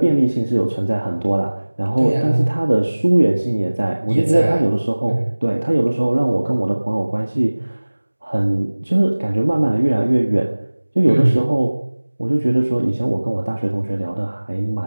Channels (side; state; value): both; inverted; correlation -1.00